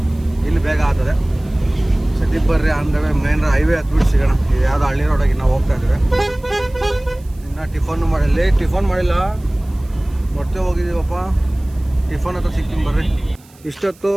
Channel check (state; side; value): noise; right; hiss, 28 dB below the sound